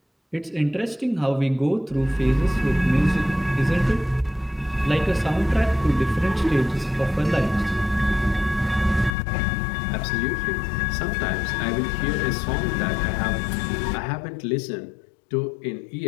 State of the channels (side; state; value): right; drops out; at 9.2 s